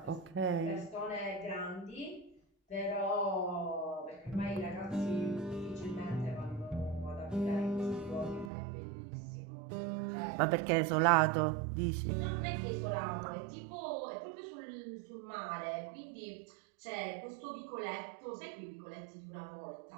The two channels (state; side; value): drops out; left; at 8.5 s